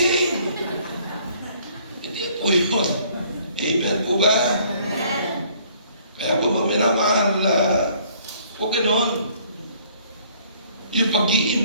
Hindi po yun. Amen po ba? Kaya po mga minamahal, huwag ganon. Yung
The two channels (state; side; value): inverted; both; correlation -0.60